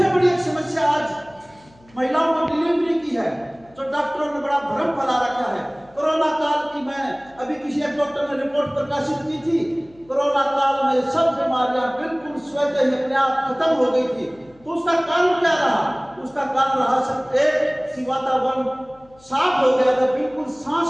बड़ी एक समस्या आज महिलाओं को डिलीवरी की है, जो डॉक्टरों ने बड़ा भ्रम फैला रखा है। कोरोना काल की मैं अभी किसी एक डॉक्टर ने रिपोर्ट प्रकाशित की थी, कोरोना काल में सब बीमारियां बिल्कुल स्वतः ही अपने आप खत्म हो गई थी। तो उसका कारण क्या रहा? उसका कारण रहा सिर्फ एक कि वातावरण साफ हो गया था, बिल्कुल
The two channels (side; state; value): left; noise; hum, 28 dB below the sound